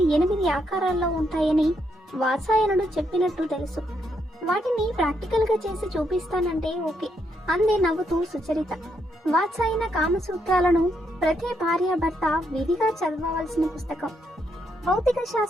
8 ఆకారాల్లో ఉంటాయని వాత్సాయనుడు చెప్పినట్టు తెలుసు. వాటిని ప్రాక్టికల్ గా చేసి చూపిస్తానంటే ఓకే అందే నవ్వుతూ సుచరిత. వాత్సాయన కామసూత్రాలను ప్రతి భార్య భర్త విధిగా చదవవలసిన పుస్తకం. భౌతిక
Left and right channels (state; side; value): normal; both; correlation 0.77